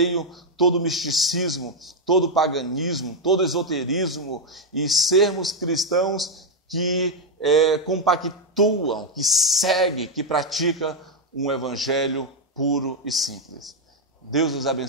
todo misticismo, todo paganismo, todo esoterismo e sermos cristãos que compactuam, que seguem, que praticam um evangelho puro e simples. Deus os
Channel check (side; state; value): both; normal; correlation 0.02